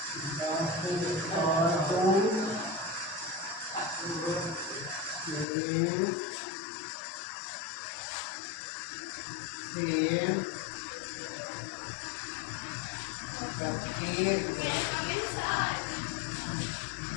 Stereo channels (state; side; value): drops out; right; at 5.5 s